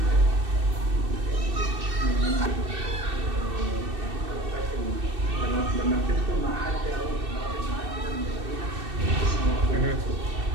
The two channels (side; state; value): left; late; 2.6 ms